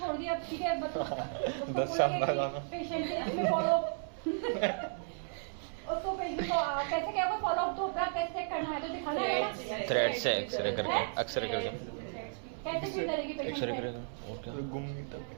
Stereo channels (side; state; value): left; silent; 55 dB below the other